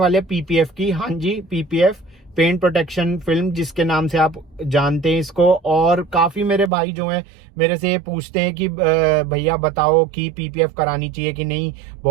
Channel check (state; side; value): drops out; left; at 6.7 s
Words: हैं पीपीएफ की। हाँ जी, पीपीएफ, पेंट प्रोटेक्शन फिल्म, जिसके नाम से आप जानते हैं इसको। और काफ़ी मेरे भाई जो हैं मेरे से पूछते हैं कि भैया बताओ कि पीपीएफ करानी चाहिए कि नहीं,